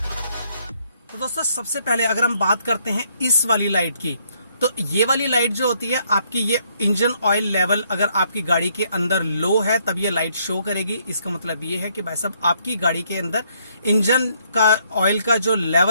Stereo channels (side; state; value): both; inverted; correlation -0.70